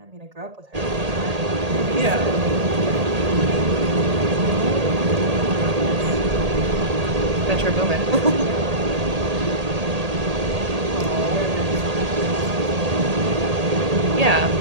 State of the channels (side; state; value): left; late; 1.8 ms